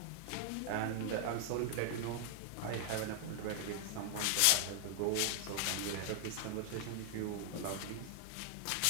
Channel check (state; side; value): different; both; correlation 0.00